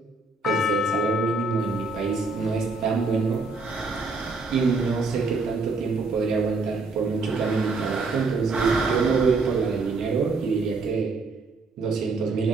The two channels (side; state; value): left; quieter; 3.7 dB